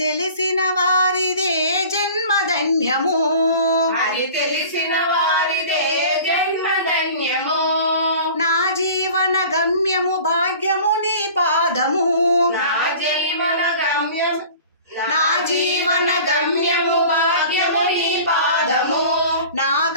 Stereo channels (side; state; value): both; inverted; correlation -0.43